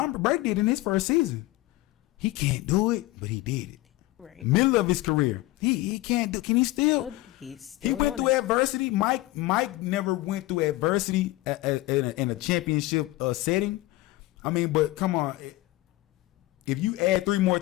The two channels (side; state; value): right; quieter; 18.6 dB